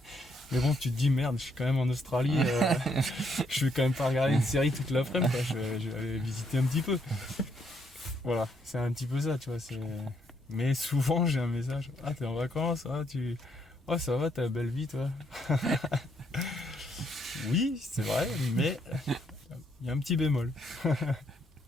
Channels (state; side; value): normal; both; correlation 0.73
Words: Mais bon, tu te dis, merde, je suis quand même en Australie, je vais quand même pas regarder une série toute l'après-midi, je vais aller visiter un petit peu. Voilà, c'est un petit peu ça, tu vois. Mais souvent, j'ai un message, t'es en vacances, ça va, t'as une belle vie, toi. Oui, c'est vrai, mais il y a un petit bémol.